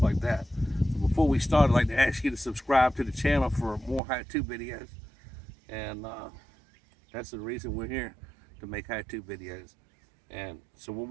like that. So before we start, I'd like to ask you to subscribe to the channel for more how-to videos. And that's the reason we're here, to make how-to videos. And so what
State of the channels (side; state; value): left; drops out; at 4.0 s